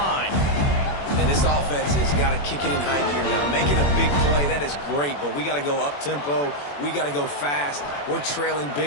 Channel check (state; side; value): late; right; 21 ms